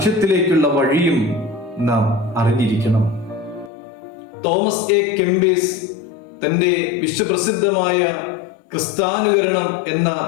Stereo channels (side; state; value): right; drops out; at 3.7 s